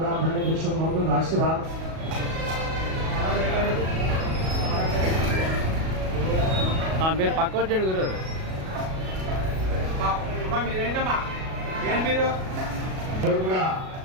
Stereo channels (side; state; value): left; late; 37 ms